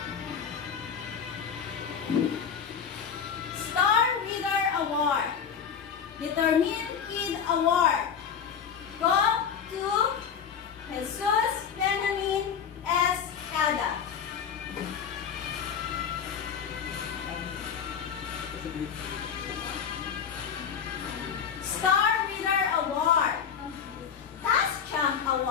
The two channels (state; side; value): quieter; right; 7.4 dB